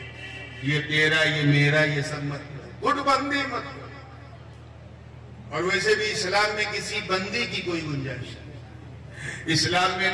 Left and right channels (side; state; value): both; identical; correlation 1.00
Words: یہ تیرا یہ میرا یہ سب مت کرو، گٹ بندی مت کرو۔ اور ویسے بھی اسلام میں کسی بندی کی کوئی گنجائش نہیں، اسلام میں